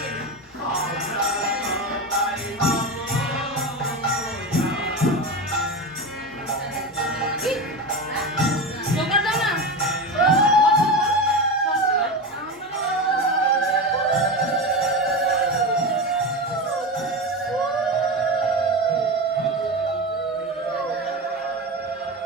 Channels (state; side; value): normal; both; correlation 0.21